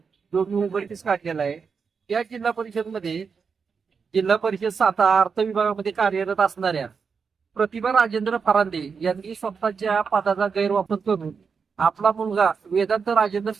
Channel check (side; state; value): left; quieter; 5.7 dB